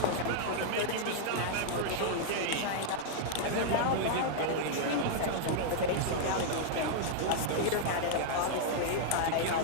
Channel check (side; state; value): both; different; correlation -0.01